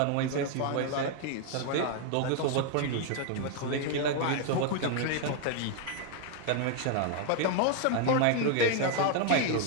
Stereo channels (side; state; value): both; different; correlation 0.00